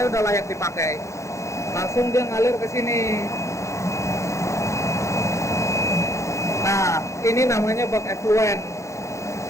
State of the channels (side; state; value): right; late; 0.14 ms